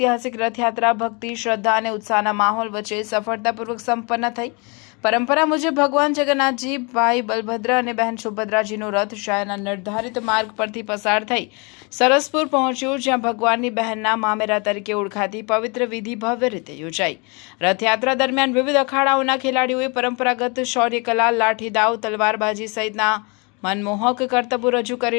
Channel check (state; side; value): quieter; right; 31.1 dB